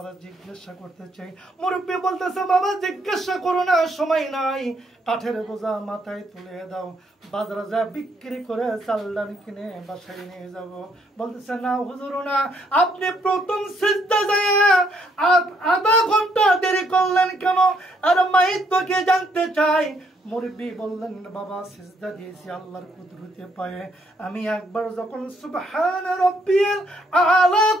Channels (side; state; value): both; normal; correlation 0.71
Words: জিজ্ঞাসা করতে চাই। মুরব্বী বলতেছে, বাবা জিজ্ঞাসা করো না, সময় নাই, কাঠের বোঝা মাথায় তুলে দাও, বাজারে যা বিক্রি করে চাল ডাল কিনে বাসায় নিয়ে যাব। বলতেছে, না হুজুর না, আপনি প্রথম সিজদা যায় আধা ঘন্টা দেরি করলেন কেন? আর মাইত তোকে জানতে চাই। মুরব্বী বললেন, বাবা সিজদা দিয়েছি আল্লাহর কুদরতে পায়ে, আমি একবার যখন সুবহান রাব্বিয়াল আলা